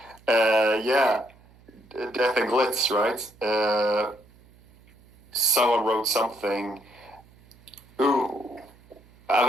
yeah, Death and Glitz, right? Someone wrote something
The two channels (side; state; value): right; noise; hum, 27 dB below the sound